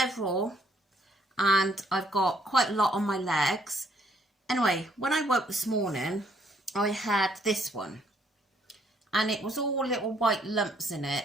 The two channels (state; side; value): normal; both; correlation 0.68